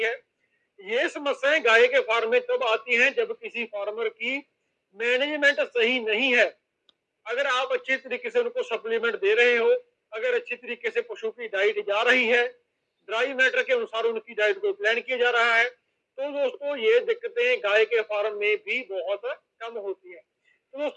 है। ये समस्याएं गाय के फार्म में तब आती हैं जब किसी फार्मर की मैनेजमेंट सही नहीं है। अगर आप अच्छे तरीके से उनको सप्लीमेंट दे रहे हो, अगर अच्छी तरीके से पशु की डाइट जा रही है, ड्राई मैटर के अनुसार उनकी डाइट को प्लान किया जा रहा है, तो दोस्तों ये दिक्कतें गाय के फार्म में भी बहुत कम होती है। तो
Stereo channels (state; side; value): identical; both; correlation 1.00